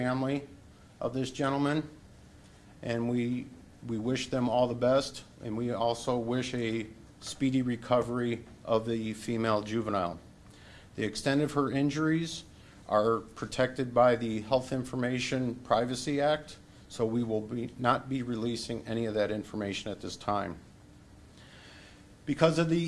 of this gentleman, and we wish them all the best, and we also wish a speedy recovery of the female juvenile. The extent of her injuries are protected by the Health Information Privacy Act, so we will not be releasing any of that information at this time. Because of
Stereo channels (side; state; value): both; identical; correlation 1.00